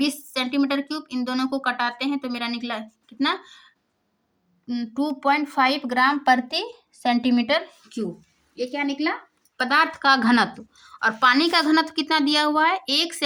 सेंटीमीटर क्यूब। इन दोनों को कटाते हैं तो मेरा निकला कितना, 2.5 ग्राम प्रति सेंटीमीटर क्यूब। ये क्या निकला, पदार्थ का घनत्व। और पानी का घनत्व कितना दिया हुआ है, 1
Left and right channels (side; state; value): both; identical; correlation 1.00